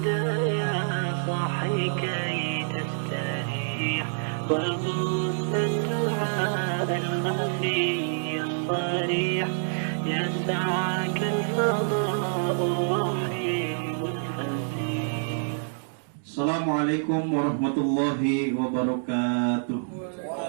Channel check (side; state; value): left; silent; digital silence